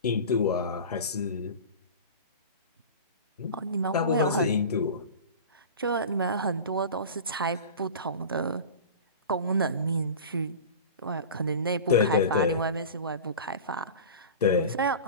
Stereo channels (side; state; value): both; inverted; correlation -0.33